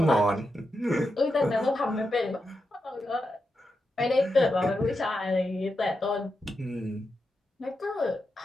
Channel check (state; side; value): normal; both; correlation 0.87